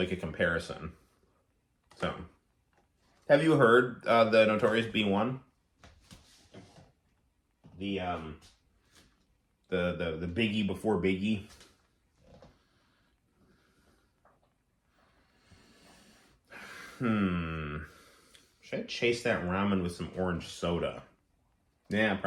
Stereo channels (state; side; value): identical; both; correlation 1.00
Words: a comparison. So, have you heard the Notorious B1? The Biggie before Biggie. Should I chase that ramen with some orange soda? Yeah,